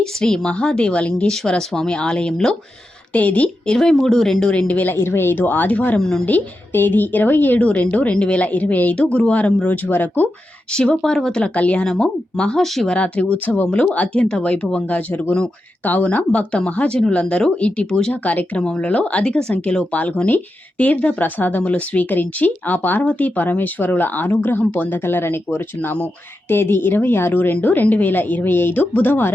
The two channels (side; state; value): both; normal; correlation 0.89